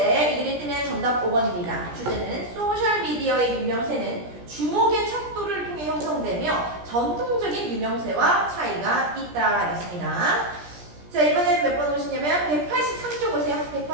이 글이 뜨면 정답 5번입니다. 주제는 소셜미디어의 유명세는 주목의 척도를 통해 형성되며 전통적인 유명세와 차이가 있다 였습니다. 자, 이번에는 몇 번 오시냐면 183쪽 오세요.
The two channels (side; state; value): left; late; 17 ms